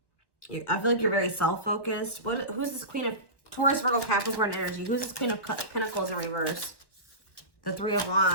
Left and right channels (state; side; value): late; right; 1.1 ms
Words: I feel like you're very self-focused. Who's this Queen of Taurus, Virgo, Capricorn energy? Who's this Queen of Pentacles in reverse? The Three of